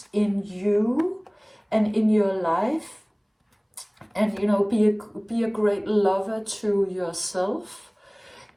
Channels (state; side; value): identical; both; correlation 1.00